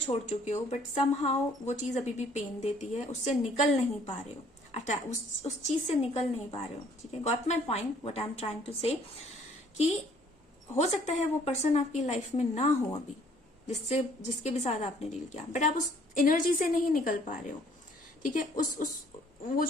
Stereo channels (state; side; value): normal; both; correlation 0.60